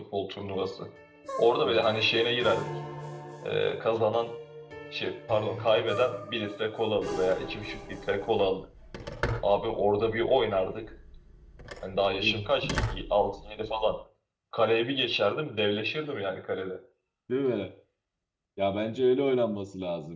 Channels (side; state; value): both; identical; correlation 1.00